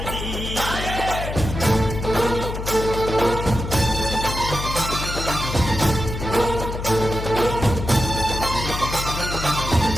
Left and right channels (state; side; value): noise; left; hum, 6 dB below the sound